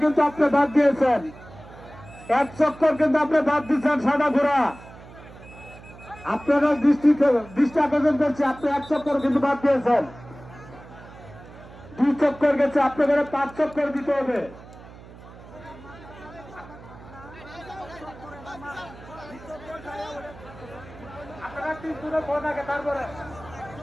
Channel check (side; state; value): right; noise; hum, 18 dB below the sound